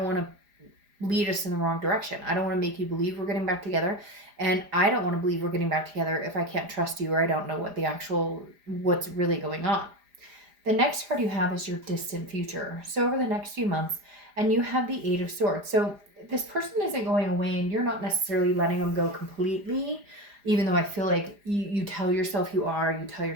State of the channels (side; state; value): left; late; 4.9 ms